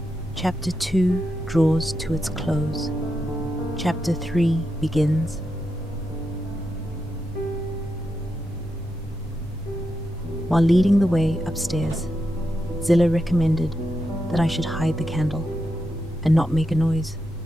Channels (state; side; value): normal; both; correlation 0.86